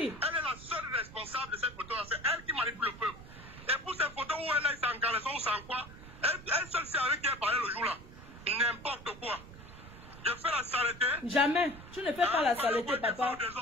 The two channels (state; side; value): noise; right; rumble, 16 dB below the sound